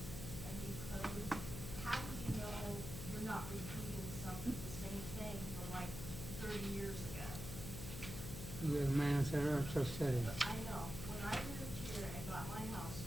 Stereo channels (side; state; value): left; noise; hum, 7 dB below the sound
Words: code, how do you know you're not repeating the same thing from like 30 years ago? The man said, just said it. I know, when I moved here and got my house